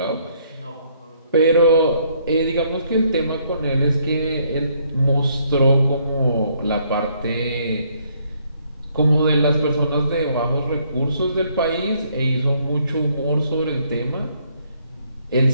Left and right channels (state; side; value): inverted; both; correlation -0.68